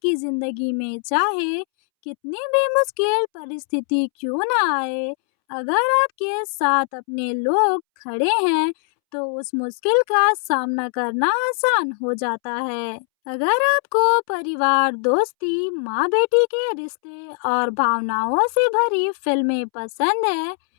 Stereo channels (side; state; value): right; silent; 65 dB below the other